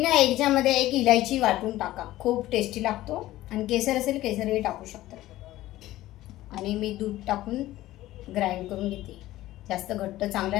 ना याच्यामध्ये एक इलायची वाटून टाका, खूप टेस्टी लागतो. आणि केसर असेल केसरही टाकू शकता. आणि मी दूध टाकून ग्राइंड करून घेते. जास्त घट्ट चांगला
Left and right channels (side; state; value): right; quieter; 15.7 dB